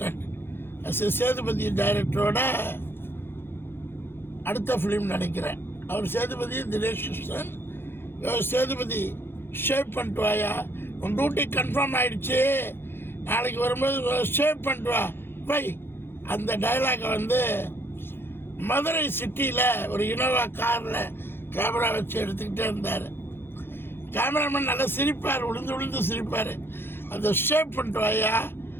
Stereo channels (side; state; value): right; late; 0.11 ms